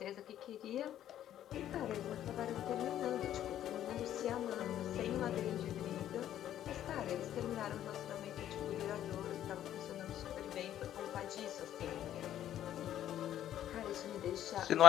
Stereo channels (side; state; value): right; quieter; 11.5 dB